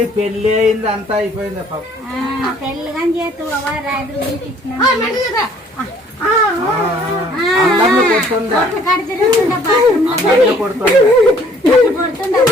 పెళ్లి అయింది, అంతా అయిపోయింది. పెళ్లి కానీ చేతు రాజు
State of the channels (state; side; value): normal; both; correlation 0.58